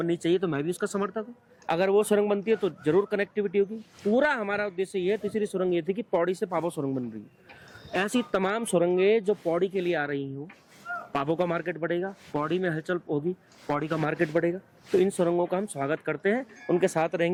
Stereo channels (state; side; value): identical; both; correlation 1.00